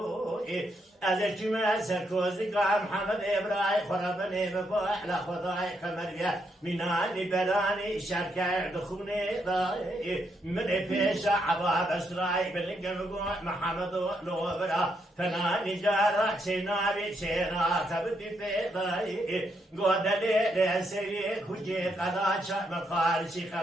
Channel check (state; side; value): normal; both; correlation 0.78